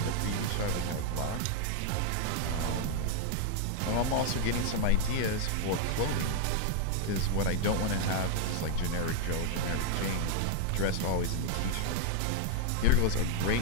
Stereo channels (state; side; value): different; both; correlation 0.01